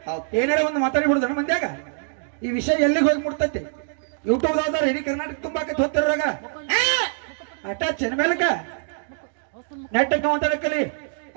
ಏನಾರ ಒಂದು ಮಾತಾಡಿ ಬಿಡುದನ ಮಂದ್ಯಾಗ ಈ ವಿಷಯ ಎಲ್ಲಿಗೆ ಹೋಗಿ ಮುಟ್ತೈತಿ ಯೂಟ್ಯೂಬ್ ದಾವ್ದಾರ ಇಡೀ ಕರ್ನಾಟಕ ತುಂಬಾಕತ್ ಹೋಗ್ತಿರಾಗ ಅಟ ಚೆನ್ಮೇಲಕ ನೆಟ್ಟಕ್ಕ ಮಾತಾಡಕಲಿ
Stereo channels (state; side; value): silent; left; digital silence